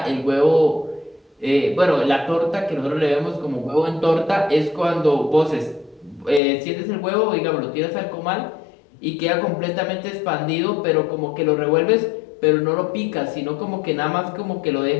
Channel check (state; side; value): drops out; right; at 6.4 s